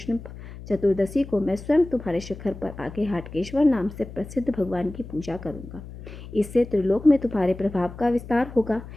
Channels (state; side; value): noise; left; hum, 14 dB below the sound